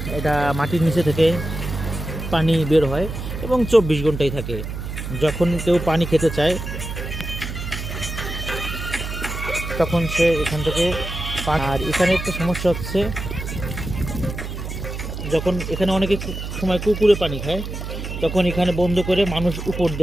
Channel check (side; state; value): right; noise; hum, 7 dB below the sound